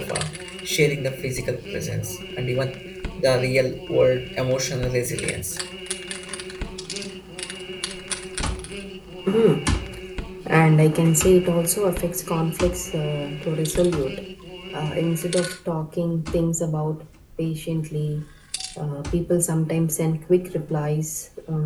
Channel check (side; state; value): both; identical; correlation 1.00